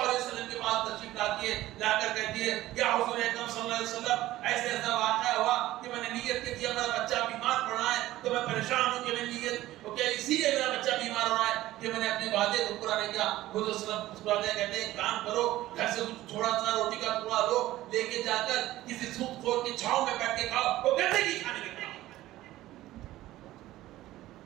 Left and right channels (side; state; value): left; quieter; 15.7 dB